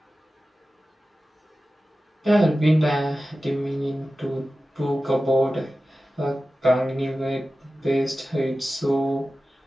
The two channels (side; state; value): both; normal; correlation 0.95